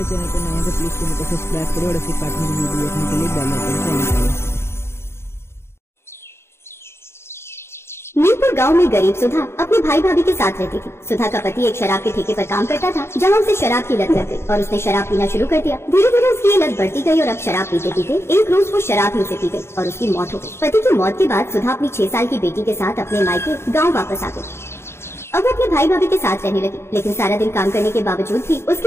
चैनल पर नए हैं तो प्लीज चैनल को सब्सक्राइब करें और ऐसे कार्टून की वीडियो देखने के लिए बेल आइकन को ऑन करें। मीरपुर गांव में गरीब सुधा अपने भाई भाभी के साथ रहती थी। सुधा का पति एक शराब के ठेके पर काम करता था, जहां उसे शराब की लत लग गई और उसने शराब पीना शुरू कर दिया। धीरे धीरे उसकी ये लत बढ़ती गई और अब शराब पीते पीते एक रोज वो शराब ही उसे पी गई और उसकी मौत हो गई। पति की मौत के बाद सुधा अपनी 6 साल की बेटी के साथ अपने मायके गाँव वापस आ गई। अब वो अपने भाई भाभी के साथ रहने लगी, लेकिन सारा दिन काम करने के बावजूद भी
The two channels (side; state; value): right; late; 0.12 ms